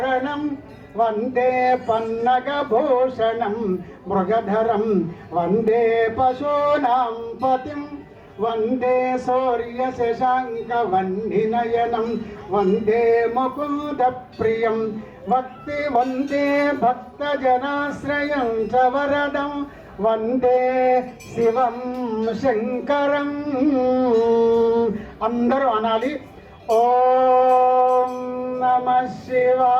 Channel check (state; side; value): identical; both; correlation 1.00